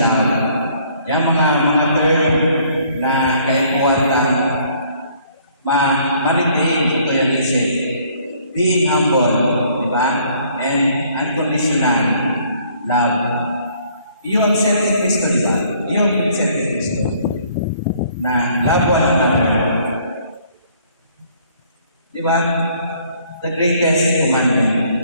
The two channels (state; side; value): inverted; both; correlation -0.61